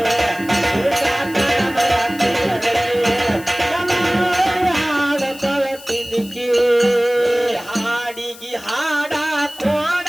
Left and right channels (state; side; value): noise; left; hiss, 18 dB below the sound